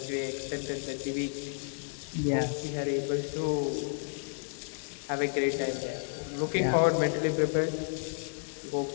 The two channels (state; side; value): silent; right; digital silence